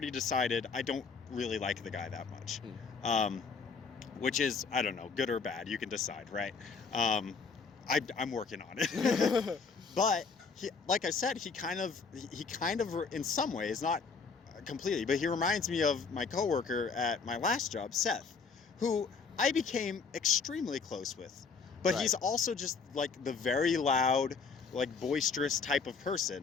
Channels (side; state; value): right; quieter; 5.1 dB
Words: decided I don't really like the guy that much. Which is, I don't know, good or bad, you can decide, right? I'm working on it. But he, like I said, he kind of in some ways, not completely, but he reminds me of my coworker at my last job, Seth, who I became extremely close with. But Right. he's also just like the very loud, like boisterous type of